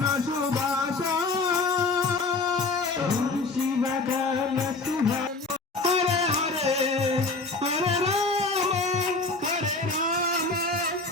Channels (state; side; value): quieter; right; 3.6 dB